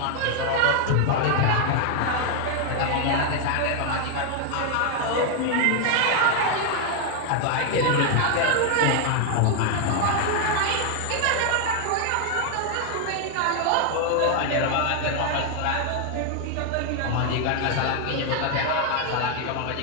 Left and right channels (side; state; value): both; different; correlation 0.00